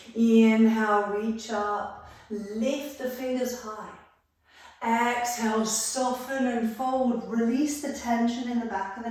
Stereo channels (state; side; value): identical; both; correlation 1.00